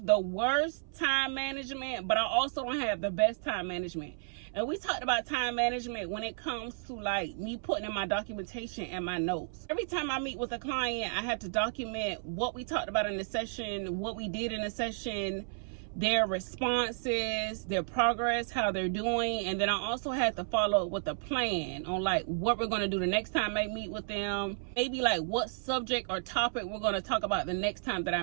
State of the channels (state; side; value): silent; left; 56 dB below the other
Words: the worst time management, but I also don't have the best time management. And we talked about time management when it comes to like me putting in my documentation and my notes. Every time I meet with a client, I have to document what we talked about in the session, what we did in the session, their responses, their progress, how they're doing. And then I also had to follow up with a plan on like what we're going to do the next time I meet with them. Maybe like what subject or topic we're going to talk about the next time that I